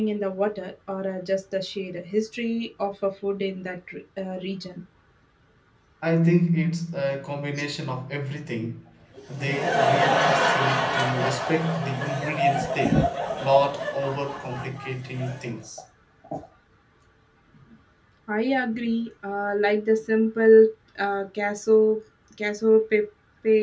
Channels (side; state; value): both; identical; correlation 1.00